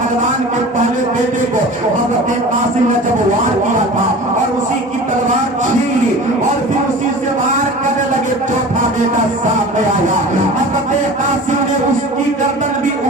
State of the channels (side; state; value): both; normal; correlation 0.38